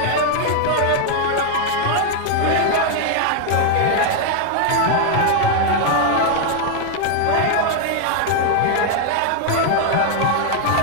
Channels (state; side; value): different; both; correlation 0.00